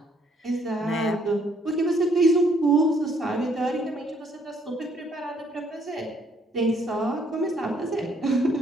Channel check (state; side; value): normal; both; correlation 0.67